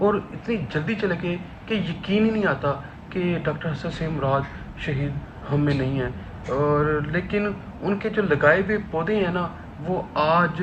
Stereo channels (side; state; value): both; identical; correlation 1.00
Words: और इतनी जल्दी चले गए कि यकीन ही नहीं आता कि डॉक्टर हसन सेम मुराद शहीद हम में नहीं है। और लेकिन उनके जो लगाए हुए पौधे हैं ना, वो आज